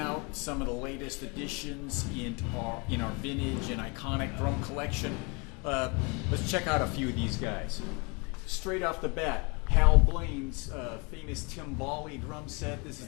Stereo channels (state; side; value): quieter; right; 30.7 dB